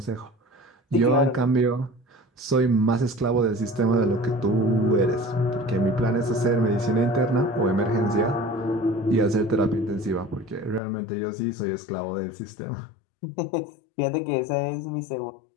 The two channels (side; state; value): right; drops out; at 10.8 s